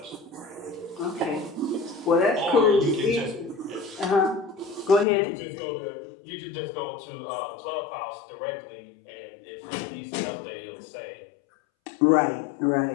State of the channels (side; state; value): right; drops out; at 5.1 s